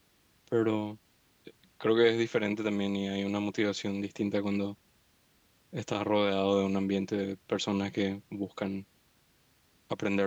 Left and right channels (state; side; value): identical; both; correlation 1.00